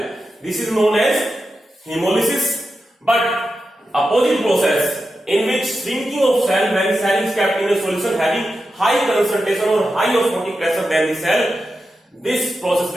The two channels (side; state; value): both; normal; correlation 0.90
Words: this is known as hemolysis. But opposite process in which shrinking of cell when cell is kept in a solution having high concentration or high osmotic pressure than the cell, this process